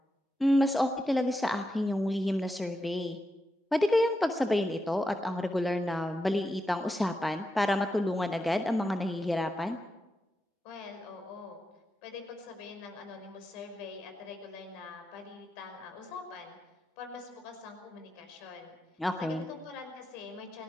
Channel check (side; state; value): both; normal; correlation 0.87